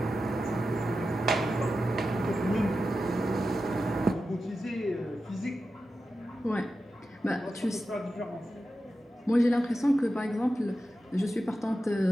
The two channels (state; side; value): normal; both; correlation 0.91